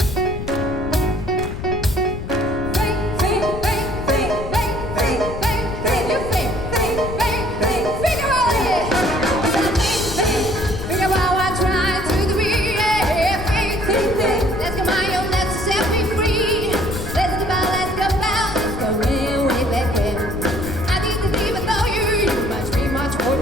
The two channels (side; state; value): left; noise; rumble, 7 dB below the sound